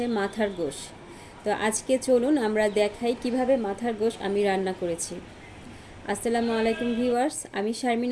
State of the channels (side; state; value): both; identical; correlation 1.00